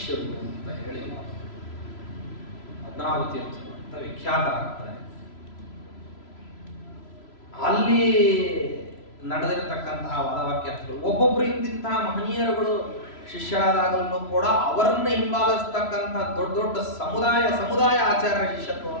ಅಂತ ಹೇಳಿ ಪದ್ಮನಾಭ ತೀರ್ಥರು ಅಂತ ವಿಖ್ಯಾತರಾಗ್ತಾರೆ. ಅಲ್ಲಿ ನಡೆದಿರತಕ್ಕಂತಹ ವಾದವಾಕ್ಯಾರ್ಥಗಳು ಒಬ್ಬೊಬ್ರು ಇಂತಿಂತಹ ಮಹನೀಯರುಗಳು ಶಿಷ್ಯರಾದಾಗಲೂ ಕೂಡ ಅವರನ್ನ ಹಿಂಬಾಲಿಸ್ತಕ್ಕಂಥ ದೊಡ್ಡ ದೊಡ್ಡ ಸಮುದಾಯ ಆಚಾರ್ಯ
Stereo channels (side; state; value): right; late; 3.0 ms